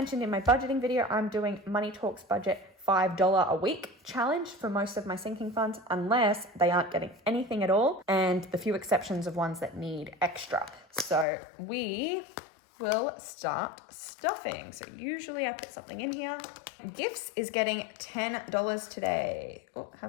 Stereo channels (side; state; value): right; drops out; at 11.2 s